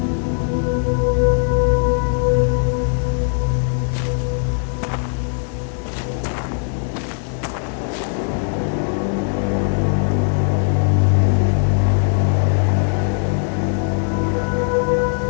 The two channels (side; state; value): right; silent; 55 dB below the other